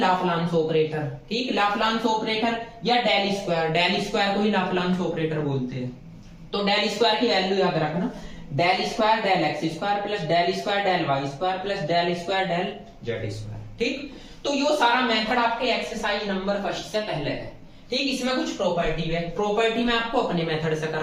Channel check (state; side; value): identical; both; correlation 1.00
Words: ऑपरेटर, ठीक। लाप्लास ऑपरेटर या डेल स्क्वायर, डेल स्क्वायर को ही लाप्लास ऑपरेटर बोलते हैं। तो डेल स्क्वायर की वैल्यू याद रखना, del square del x square plus del square del y square plus del square del z square, ठीक। तो ये सारा मेथड आपके एक्सरसाइज नंबर 1 से पहले है, ठीक। इसमें कुछ प्रॉपर्टी है, प्रॉपर्टी मैं आपको अपने मेथड से